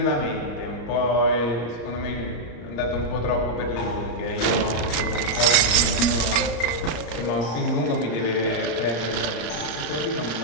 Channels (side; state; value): right; late; 34 ms